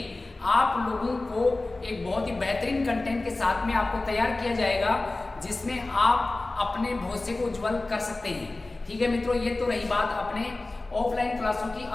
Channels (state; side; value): quieter; right; 3.1 dB